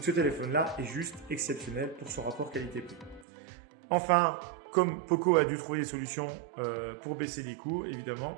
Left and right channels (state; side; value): drops out; left; at 3.2 s